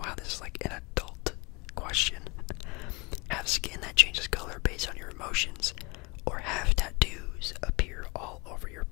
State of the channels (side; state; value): right; quieter; 27.3 dB